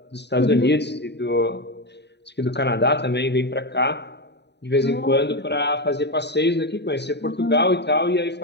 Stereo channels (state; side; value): late; right; 0.50 ms